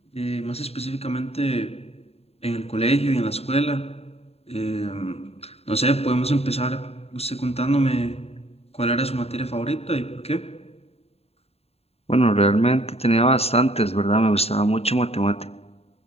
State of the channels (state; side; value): late; right; 0.29 ms